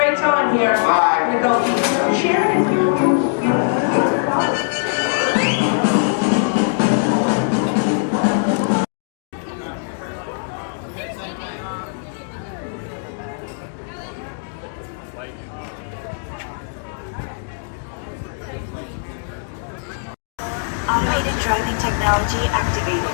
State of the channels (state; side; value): silent; right; digital silence